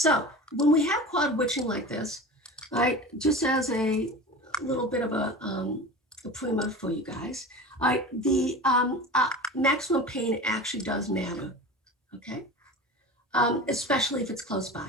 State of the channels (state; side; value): normal; both; correlation 0.33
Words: when we have quad witching like this, All right, just as a little bit of a primer for you guys. All right, the maximum pain actually does matter, okay? Especially if it's close